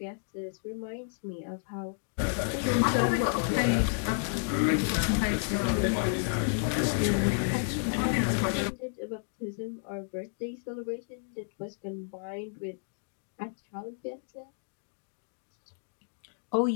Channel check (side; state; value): right; silent; digital silence